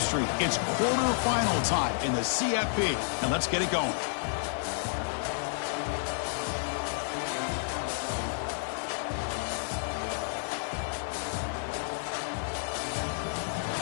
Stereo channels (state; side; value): silent; right; 57 dB below the other